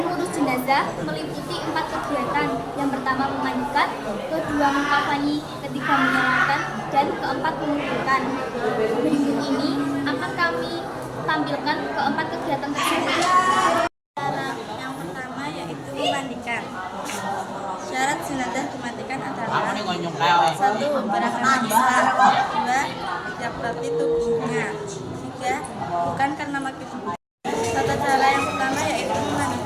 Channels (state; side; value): identical; both; correlation 1.00